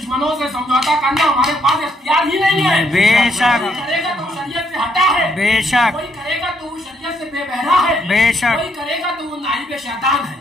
سے سمجھوتا کرنا ہمارے پاس اختیار ہی نہیں ہے. بے شک. کوئی کرے گا تو شریعت سے ہٹا ہے, بے شک. کوئی کرے گا تو وہ شریعت سے بے بہرا ہے, بے شک. کوئی کرے گا تو وہ نائب شیطان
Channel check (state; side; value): normal; both; correlation 0.72